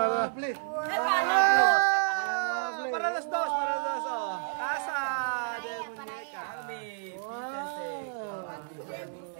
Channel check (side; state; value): left; silent; 57 dB below the other